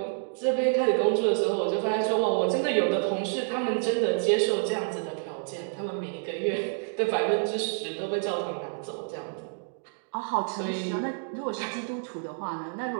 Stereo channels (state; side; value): silent; left; 59 dB below the other